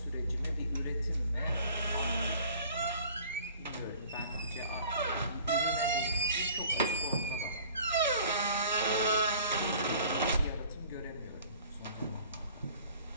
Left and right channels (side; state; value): both; inverted; correlation -0.49